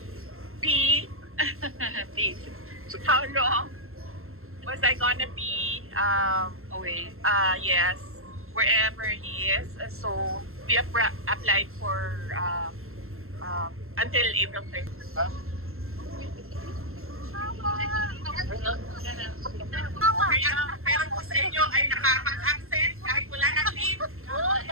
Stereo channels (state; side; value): late; left; 0.62 ms